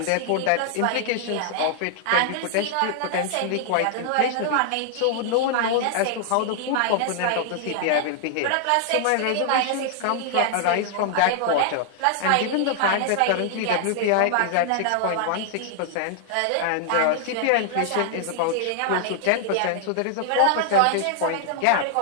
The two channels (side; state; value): both; different; correlation -0.01